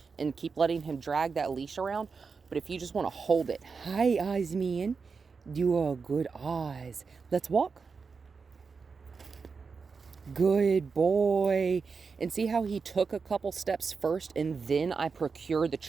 and keep letting him drag that leash around, but if you just want to hold it, hi, Oz man, you are good Oz. Let's walk. Good boy. And see how he took a couple steps first and then I procured the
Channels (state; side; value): quieter; left; 5.1 dB